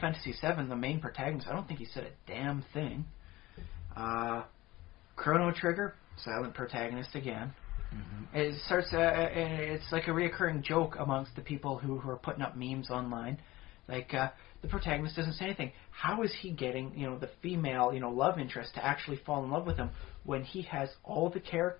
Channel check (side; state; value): right; quieter; 18.6 dB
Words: VII, the main protagonist, I don't think he said a damn thing. Chrono Trigger, silent protagonist again. Mm-hmm. It starts. It's like a reoccurring joke amongst the people who are putting up memes online. The protagonist doesn't say anything. How is he getting, the female, love interest to actually fall in love with him when he has all the